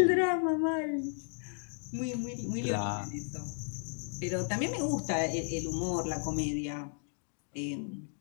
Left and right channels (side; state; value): right; silent; 55 dB below the other